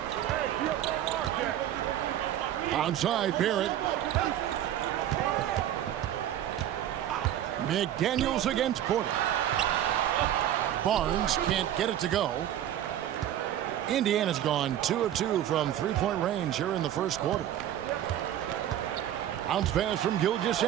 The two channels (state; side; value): quieter; left; 11.6 dB